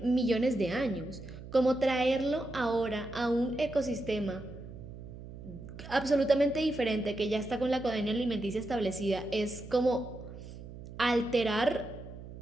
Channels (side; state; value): right; noise; hum, 13 dB below the sound